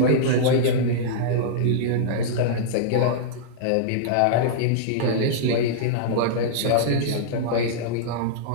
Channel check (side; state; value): both; different; correlation -0.03